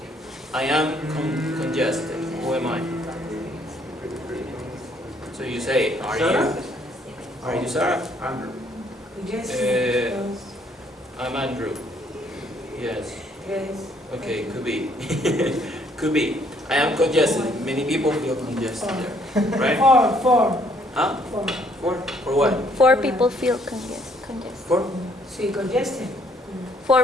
I am congested. Who am I? So you say, are you? Are you Sarah? Andrew. Yes. I'm Andrew. Yes. Yes. Okay, could be. Could be. I am congested. Many people feel congested there, right? Four. Huh? Four. For what? 4 people feel congested. For? Sí, congested.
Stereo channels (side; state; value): both; normal; correlation 0.66